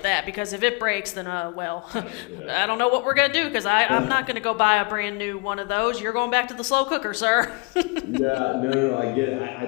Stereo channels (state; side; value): quieter; right; 29.4 dB